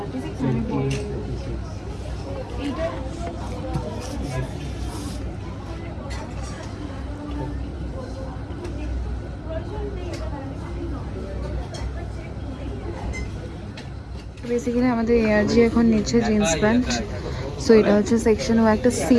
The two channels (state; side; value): identical; both; correlation 1.00